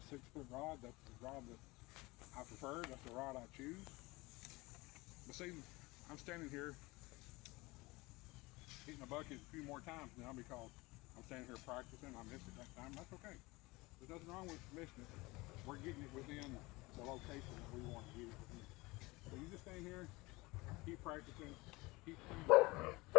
6-foot rod. That's the rod that I prefer. That's the rod I choose. But see, I'm standing here hitting a bucket a few more times now because I'm standing here practicing. I missed it that time. That's okay. There's nothing wrong with missing it. We're getting it within the location that we want to get it within. So you just stay here, keep practicing, keep playing.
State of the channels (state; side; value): quieter; right; 22.7 dB